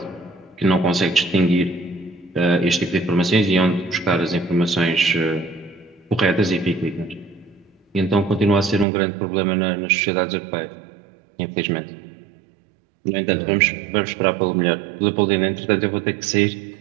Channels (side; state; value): left; drops out; at 8.8 s